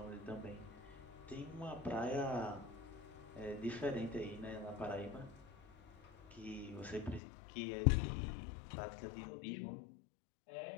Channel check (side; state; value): right; drops out; at 7.2 s